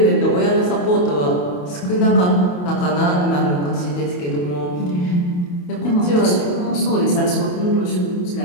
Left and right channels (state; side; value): late; right; 28 ms